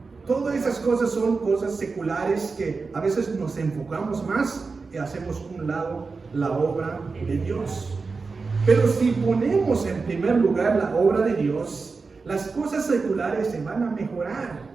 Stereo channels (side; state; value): left; quieter; 4.4 dB